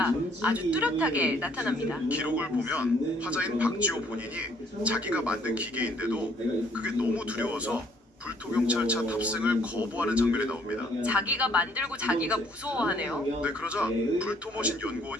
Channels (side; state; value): both; normal; correlation 0.63